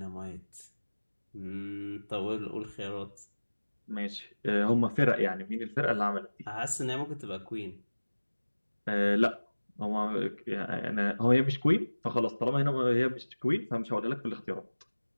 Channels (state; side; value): inverted; both; correlation -1.00